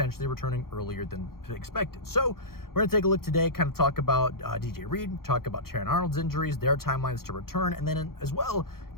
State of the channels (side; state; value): right; late; 0.93 ms